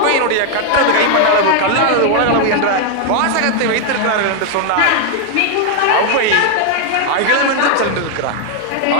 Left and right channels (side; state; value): both; different; correlation 0.00